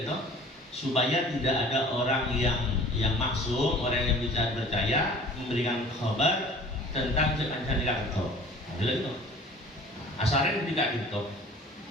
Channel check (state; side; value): normal; both; correlation 0.47